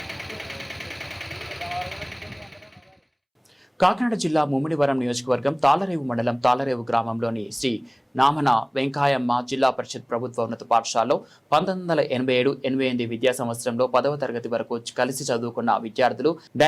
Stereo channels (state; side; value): identical; both; correlation 1.00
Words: కాకినాడ జిల్లా ముమ్మిడివరం నియోజకవర్గం తాళ్లరేవు మండలం తాళ్లరేవు గ్రామంలోని శ్రీ నామన వెంకాయమ్మ జిల్లా పరిషత్ ప్రభుత్వ ఉన్నత పాఠశాలలో 1987-88 విద్యా సంవత్సరంలో 10వ తరగతి వరకు కలిసి చదువుకున్న విద్యార్థులు